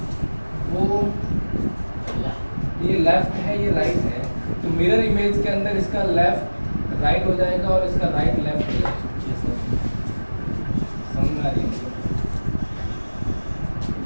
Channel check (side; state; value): both; inverted; correlation -1.00